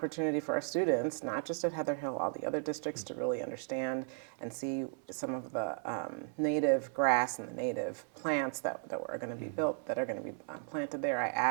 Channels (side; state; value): left; silent; 54 dB below the other